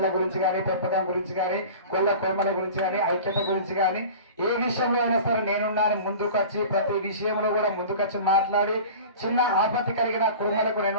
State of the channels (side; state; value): both; inverted; correlation -0.38